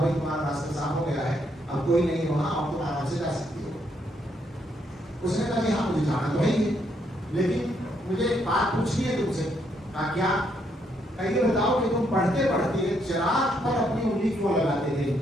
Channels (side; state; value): both; normal; correlation 0.74